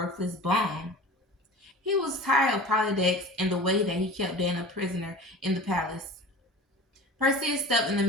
bum. He was tired of Polydex and the way that he kept Dana a prisoner in the palace. Perseus stepped in the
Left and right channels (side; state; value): both; normal; correlation 0.37